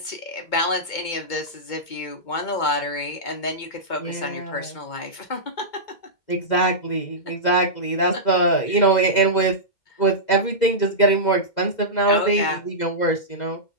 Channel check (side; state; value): right; late; 2.2 ms